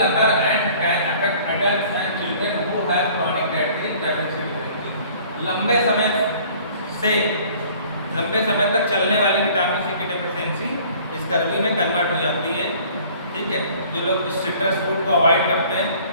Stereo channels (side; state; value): both; inverted; correlation -0.52